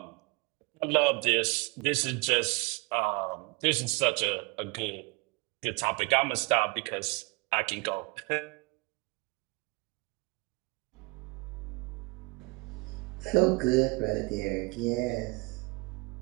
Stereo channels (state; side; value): quieter; left; 27.3 dB